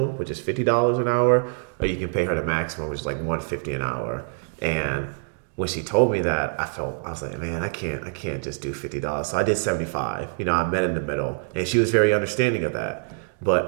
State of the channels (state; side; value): silent; left; digital silence